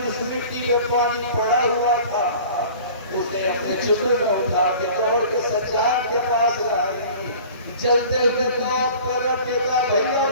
اس مٹی میں پانی پڑا ہوا تھا اسے اپنے چولہے میں اٹھا کے دوڑ کے سجاد کے پاس لائی جلتے ہوئے توپ پر رکھ کے کہا بھیا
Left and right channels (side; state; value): both; inverted; correlation -0.44